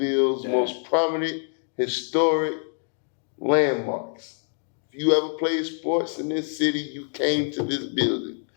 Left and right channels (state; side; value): silent; right; 61 dB below the other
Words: most prominent historic landmarks. If you ever played sports in this city, you came to this building.